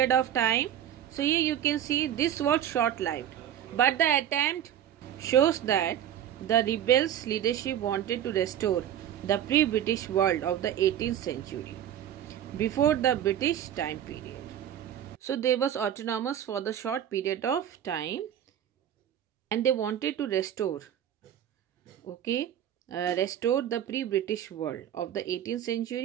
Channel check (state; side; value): quieter; left; 10.5 dB